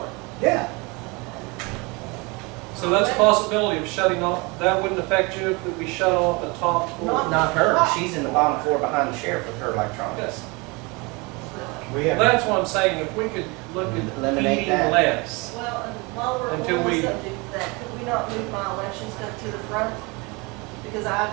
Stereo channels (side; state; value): left; quieter; 27.2 dB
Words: Yeah, So that's a possibility of shutting off, that wouldn't affect you if we shut off the top floor? Not her, she's in the bottom floor behind the sheriff with her electronics. we Well, have, that's what I'm saying, if we could look at Eliminate heating that. less. well, and while we're on Until the we- subject of that, could we not move my election stuff to the front? Because